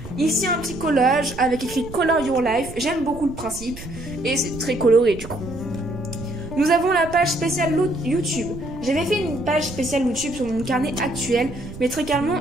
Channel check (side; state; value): right; noise; rumble, 14 dB below the sound